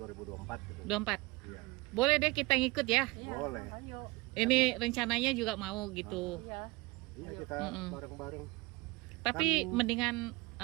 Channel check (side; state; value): left; quieter; 22.9 dB